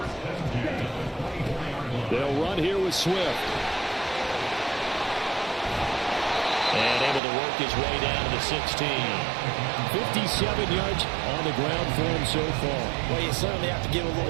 They'll run here with Swift. And able to work his way down to the 16. 57 yards on the ground for him so far. Well, you certainly have to give a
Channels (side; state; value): left; drops out; at 7.2 s